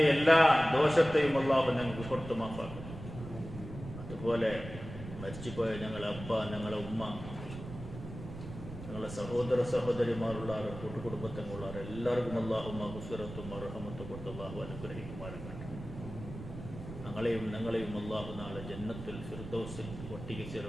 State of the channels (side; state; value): right; noise; rumble, 11 dB below the sound